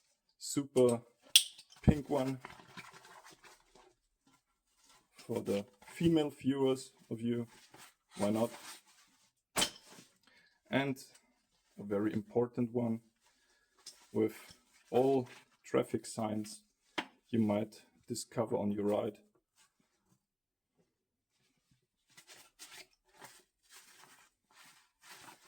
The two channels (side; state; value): both; identical; correlation 1.00